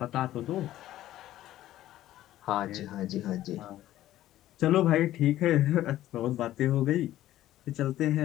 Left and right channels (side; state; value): right; quieter; 13.9 dB